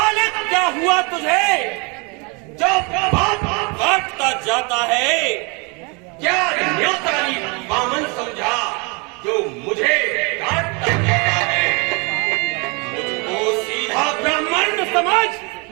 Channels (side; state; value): left; quieter; 31.1 dB